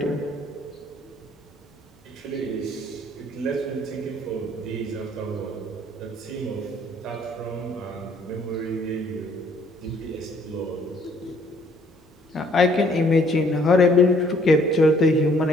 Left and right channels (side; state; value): both; normal; correlation 0.62